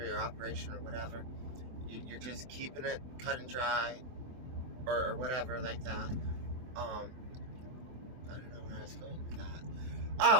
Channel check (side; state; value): left; late; 23 ms